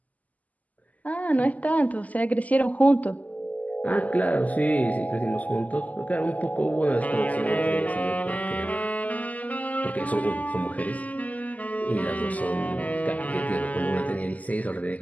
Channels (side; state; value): right; late; 0.076 ms